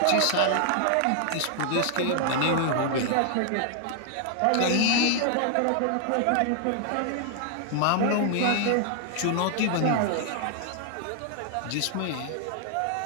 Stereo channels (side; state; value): both; different; correlation 0.00